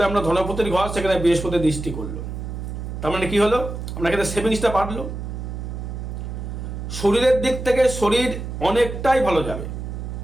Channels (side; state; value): right; noise; hum, 6 dB below the sound